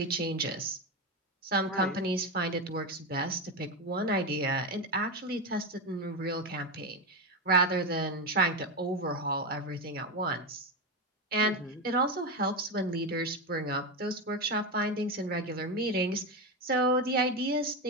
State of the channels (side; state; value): both; normal; correlation 0.13